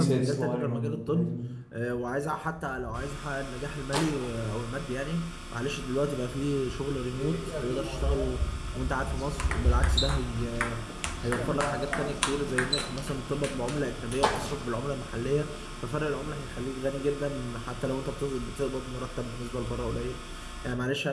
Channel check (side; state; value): both; identical; correlation 1.00